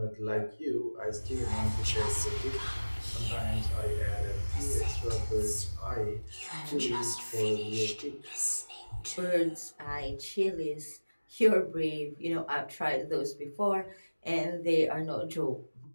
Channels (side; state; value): both; inverted; correlation -1.00